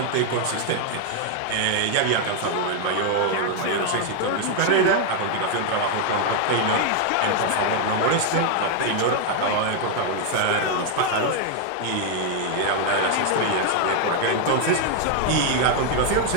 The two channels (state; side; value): different; both; correlation 0.00